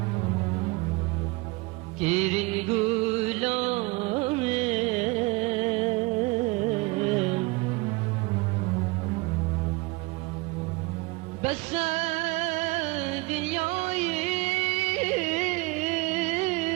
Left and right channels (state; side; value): quieter; left; 24.5 dB